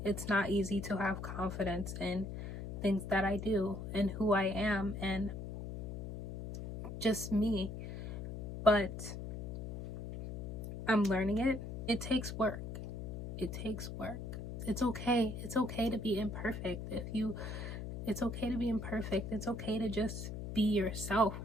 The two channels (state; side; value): noise; left; hum, 6 dB below the sound